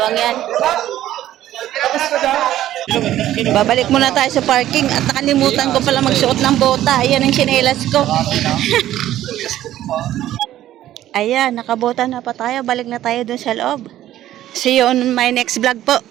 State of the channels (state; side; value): quieter; left; 13.1 dB